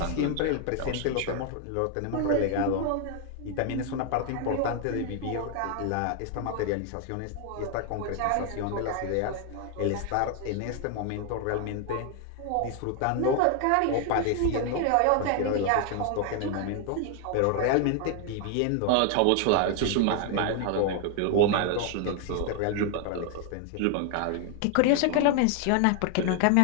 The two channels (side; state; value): both; different; correlation 0.00